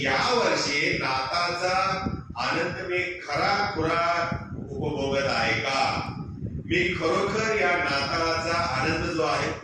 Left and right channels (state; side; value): identical; both; correlation 1.00